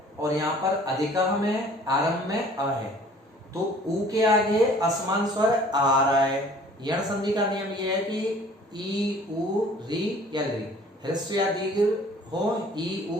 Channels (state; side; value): normal; both; correlation 0.52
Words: और यहाँ पर अधिकः में आरंभ में अ है, तो उ के आगे असमान स्वर आ रहा है। यण संधि का नियम यह है कि ई उ री या री, ह्रस्व या दीर्घ हो, ई